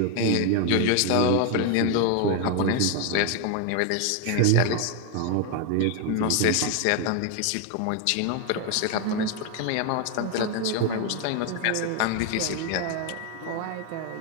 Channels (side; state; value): both; different; correlation 0.01